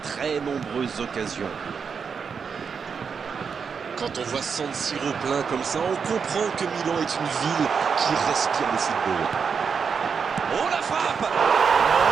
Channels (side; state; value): left; quieter; 6.1 dB